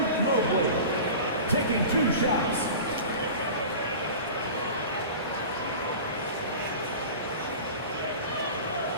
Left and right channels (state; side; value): inverted; both; correlation -0.35